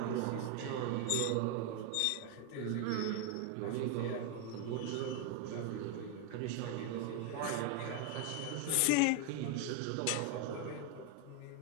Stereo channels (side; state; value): both; different; correlation 0.01